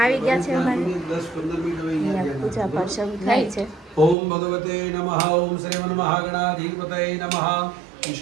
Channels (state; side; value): drops out; left; at 4.2 s